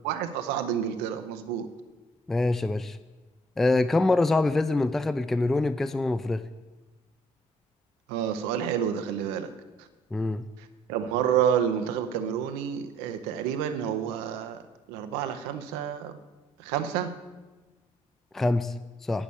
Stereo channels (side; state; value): both; normal; correlation 0.63